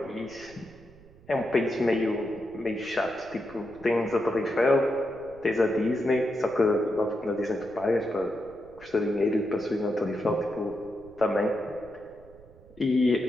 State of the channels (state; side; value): noise; right; rumble, 23 dB below the sound